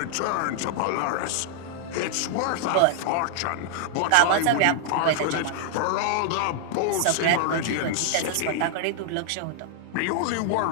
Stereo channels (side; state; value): both; different; correlation -0.01